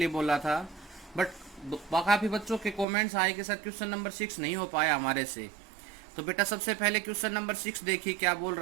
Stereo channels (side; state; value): left; drops out; at 2.9 s